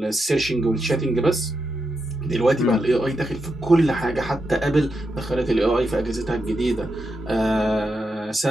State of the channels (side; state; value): both; normal; correlation 0.85